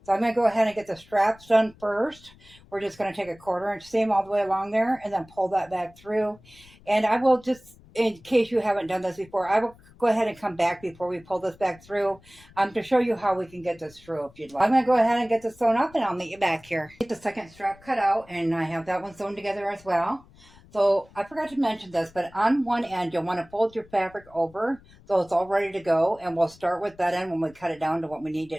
So I'm going to go ahead and get the straps done first. We're just going to take a 1/4 inch seam all the way along there and then pull that back through. And I will just, in case you haven't done this before, I will go ahead and come back before we pull this back through to show you how we can get this through if you'd like. I'm going to go ahead and get this sewn up and I'll meet you back here. Get the second strap cut out and I have that one sewn together as well. So I forgot to mention this, but on one end you'll want to fold your fabric over so it's all ready to go, and we'll start with that end when we cut it down to what we need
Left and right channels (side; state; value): left; noise; rumble, 25 dB below the sound